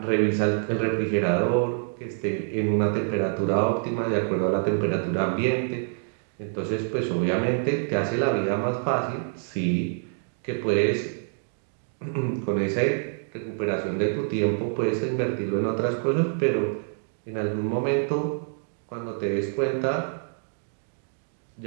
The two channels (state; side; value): silent; left; 61 dB below the other